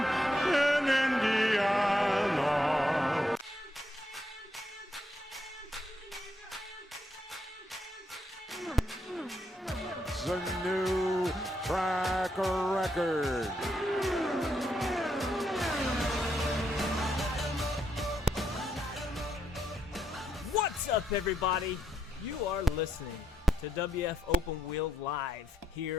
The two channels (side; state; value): both; normal; correlation 0.79